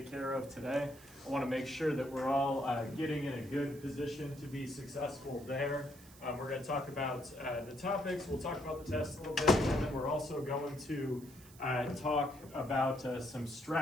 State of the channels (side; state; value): right; noise; hiss, 21 dB below the sound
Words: care of today. I want to make sure that we're all getting in a good position to be successful there. We're going to talk about the topics, we'll talk about the test a little bit, and then we're also going to talk about some